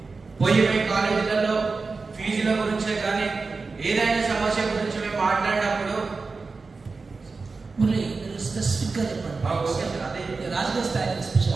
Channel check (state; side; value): quieter; left; 4.2 dB